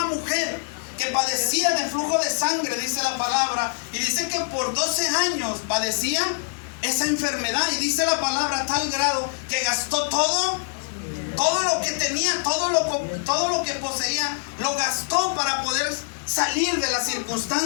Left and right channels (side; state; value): right; silent; 62 dB below the other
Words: mujer que padecía de flujo de sangre, dice la palabra, y dice que por 12 años padecía esa enfermedad, y dice la palabra a tal grado que gastó todo lo que tenía, todo lo que poseía, lo gastó para poder salir de la